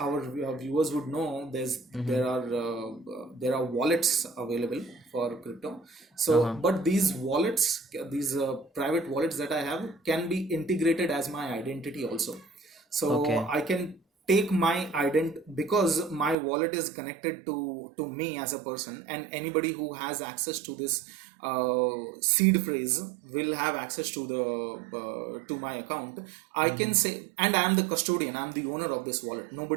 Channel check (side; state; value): left; drops out; at 16.4 s